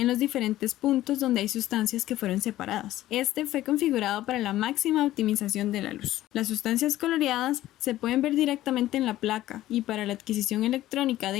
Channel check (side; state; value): right; quieter; 14.7 dB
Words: los diferentes puntos donde hay sustancias que fueron separadas. Este fue configurado para la máxima optimización de la luz. Las sustancias coloreadas se pueden ver directamente en la placa y para la adquisición electrónica